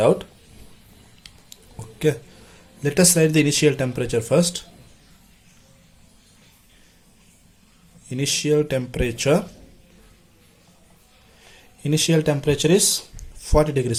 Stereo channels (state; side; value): identical; both; correlation 1.00